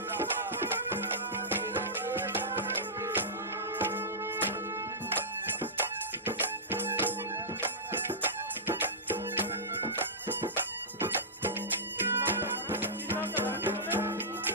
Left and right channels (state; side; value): normal; both; correlation -0.16